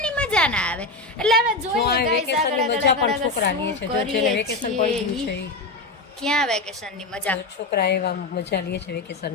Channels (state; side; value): quieter; right; 3.1 dB